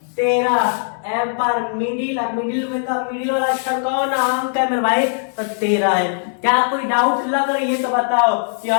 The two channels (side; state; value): right; silent; digital silence